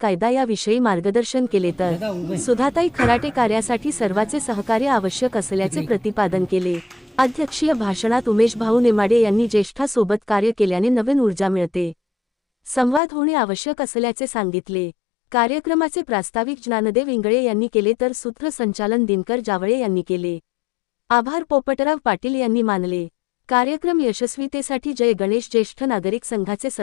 याविषयी मार्गदर्शन केले, तर सुधाताई खराटे कार्यासाठी सर्वांचे सहकार्य आवश्यक असल्याचे प्रतिपादन केले। अध्यक्षीय भाषणात उमेश भाऊ नेमाडे यांनी ज्येष्ठासोबत कार्य केल्याने नवीन ऊर्जा मिळते, संवाद होणे आवश्यक असल्याचे सांगितले। कार्यक्रमाचे प्रास्ताविक ज्ञानदेव इंगळे यांनी केले, तर सूत्रसंचालन दिनकर जावळे यांनी केले। आभार पोपटराव पाटील यांनी मानले। कार्यक्रम यशस्वीतेसाठी जय गणेश ज्येष्ठ नागरिक संघाचे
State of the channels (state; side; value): drops out; right; at 13.0 s